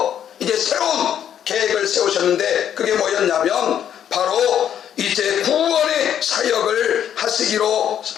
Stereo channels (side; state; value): right; quieter; 9.6 dB